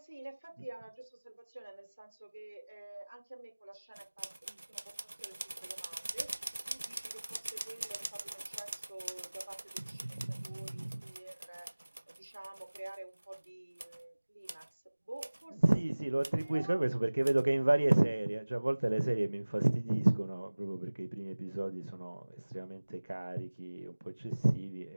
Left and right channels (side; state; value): both; inverted; correlation -1.00